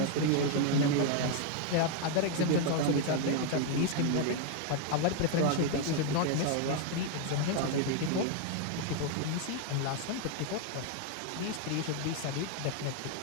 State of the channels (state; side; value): different; both; correlation 0.00